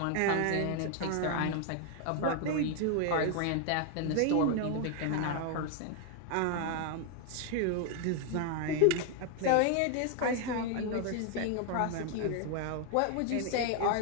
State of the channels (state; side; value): different; both; correlation 0.00